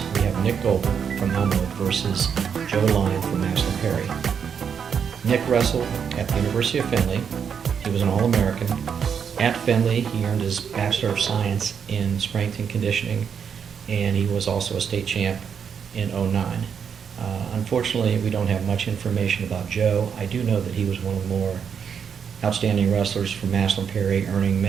we have Nick Goebel from Elmwood versus Joe Lyon from Maslin Perry. Nick wrestled at the University of Findlay. He was an All-American, At Findlay, he earned his Bachelor of Science in Strength and Conditioning, and he was also a state champ in '09. Unfortunately, we don't have much information about Joe. I do know that he was one of the more outstanding wrestlers from Massillon Perry, earning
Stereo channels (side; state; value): left; quieter; 7.2 dB